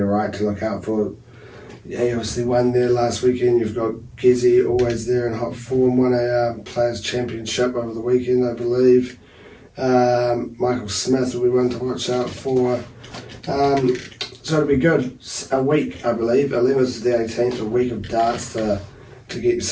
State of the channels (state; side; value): identical; both; correlation 1.00